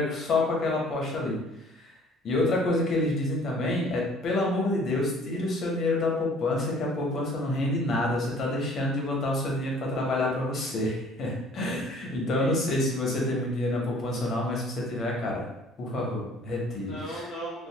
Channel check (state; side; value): normal; both; correlation 0.54